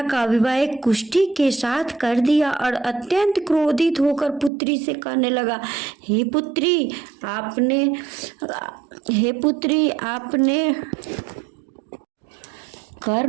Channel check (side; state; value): left; drops out; at 4.5 s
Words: का विवाह एक कुष्ठी के साथ कर दिया और अत्यंत क्रोधित होकर पुत्री से कहने लगा, हे पुत्री आपने